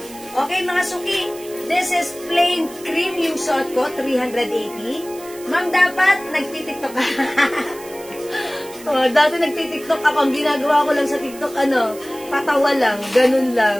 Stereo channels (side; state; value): right; noise; hiss, 18 dB below the sound